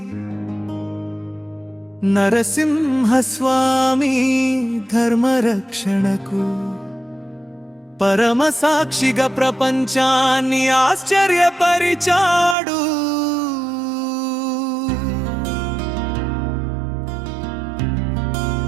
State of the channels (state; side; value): drops out; left; at 12.6 s